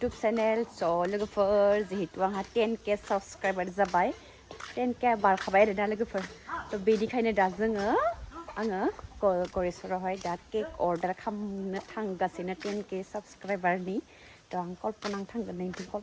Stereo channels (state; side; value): identical; both; correlation 1.00